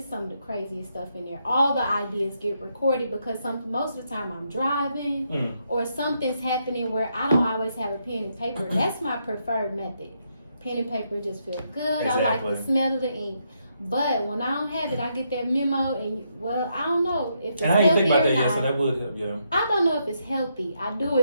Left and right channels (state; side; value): inverted; both; correlation -0.78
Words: some of the craziest stuff in there. All the ideas get recorded because most of the time I'm driving or something's happening where I don't always have a pen and paper. That's my preferred method. Pen and paper just feel good. Exactly. I like the smell of the ink. But when I don't have it, I get that memo, and I don't know if it's healthy. And I didn't think about that not. yet, so that would help, yeah. I don't know if it's healthy. I do